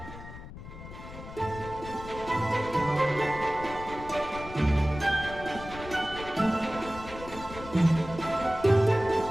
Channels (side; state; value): left; noise; rumble, 13 dB below the sound